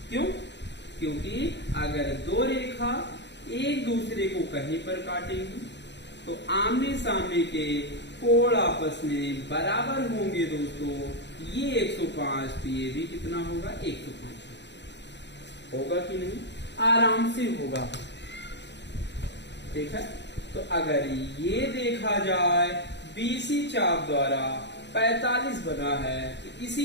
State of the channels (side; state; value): right; late; 0.51 ms